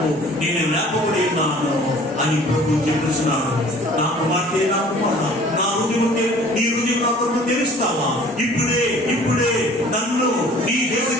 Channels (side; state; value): both; normal; correlation 0.50